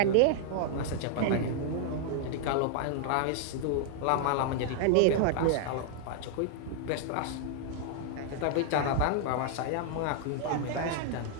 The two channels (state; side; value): different; both; correlation -0.01